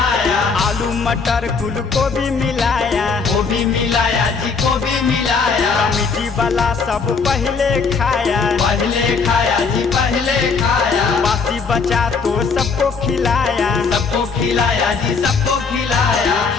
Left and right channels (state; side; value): quieter; right; 5.0 dB